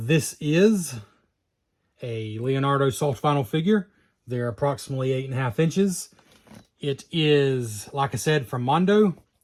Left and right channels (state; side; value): identical; both; correlation 1.00